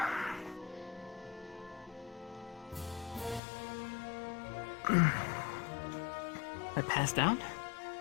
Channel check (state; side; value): drops out; right; at 3.4 s